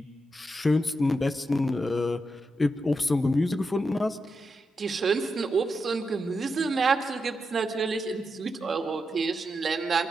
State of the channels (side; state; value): both; normal; correlation 0.86